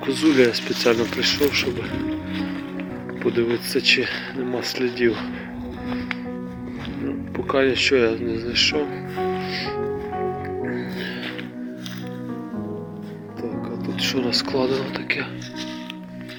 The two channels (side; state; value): both; identical; correlation 1.00